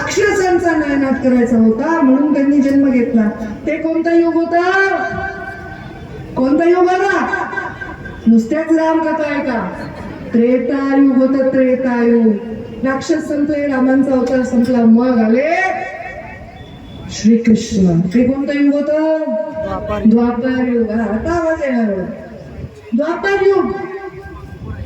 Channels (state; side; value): identical; both; correlation 1.00